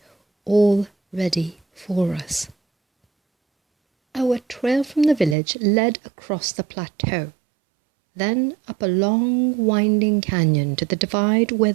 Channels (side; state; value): left; drops out; at 5.4 s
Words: all ready for us. Our trail from the village led across the plateau, then up a long winding canyon to the divide where